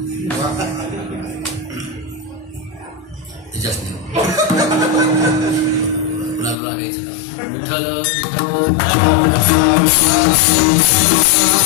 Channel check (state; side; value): drops out; right; at 6.6 s